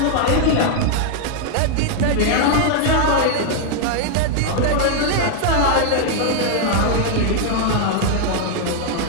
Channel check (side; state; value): both; different; correlation 0.00